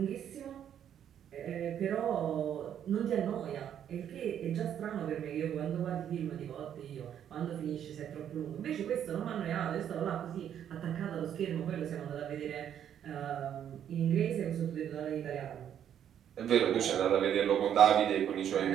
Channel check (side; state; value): left; quieter; 9.6 dB